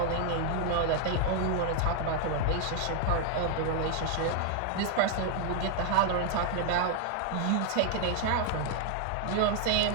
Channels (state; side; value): different; both; correlation 0.00